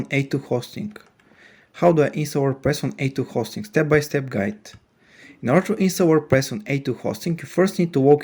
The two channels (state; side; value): identical; both; correlation 1.00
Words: A2 hosting. How do I install WordPress on A2 hosting? Step-by-step guide. In order to install WordPress on A2 hosting, you first need to